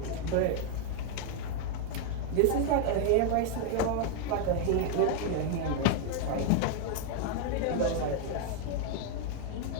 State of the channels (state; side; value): different; both; correlation 0.01